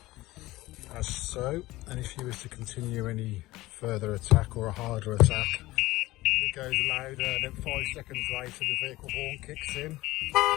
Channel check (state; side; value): quieter; right; 18.3 dB